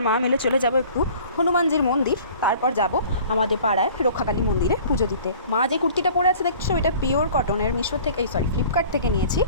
মা মিলে চলে যাব একটু হনুমানজির মন্দির, তারপর যাব আমাদের পাড়ায় রক্ষাকালী মন্দিরে পুজো দিতে। মা যে কুর্তিটা পরে আছে দেখছো, এটা পিওর কটনের, মিশো থেকে ফ্লিপকার্ট থেকে নিয়েছি।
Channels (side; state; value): both; inverted; correlation -0.48